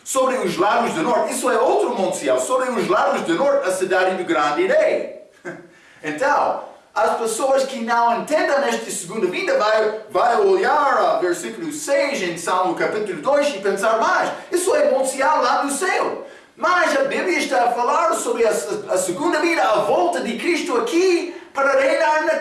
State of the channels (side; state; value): both; identical; correlation 1.00